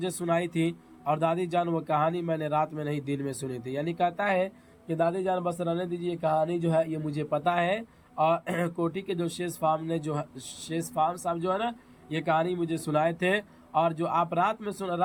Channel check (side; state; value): both; identical; correlation 1.00